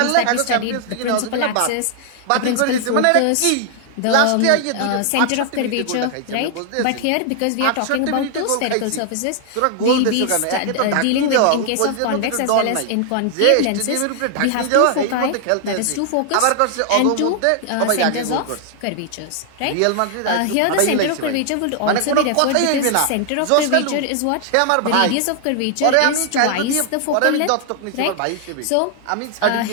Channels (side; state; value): both; different; correlation 0.00